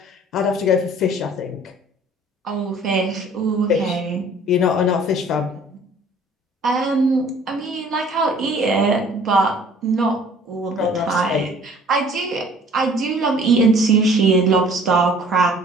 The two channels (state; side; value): normal; both; correlation 0.53